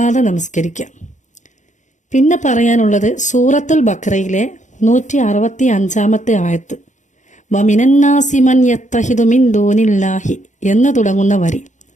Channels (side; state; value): right; late; 0.35 ms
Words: നമസ്കരിക്കാം. പിന്നെ പറയാനുള്ളത് സൂറത്തുൽ ബഖറയിലെ 165 ആയത്ത്, വമിനന്നാസി മൻ യത്തഹിദു മിൻ ദൂനില്ലാഹി എന്ന് തുടങ്ങുന്ന വരി,